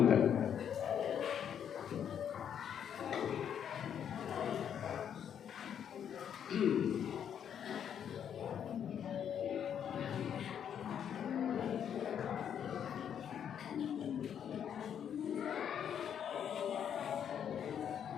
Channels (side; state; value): right; quieter; 8.7 dB